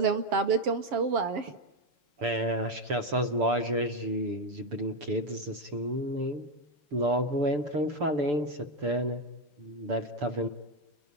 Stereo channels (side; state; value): left; late; 6.8 ms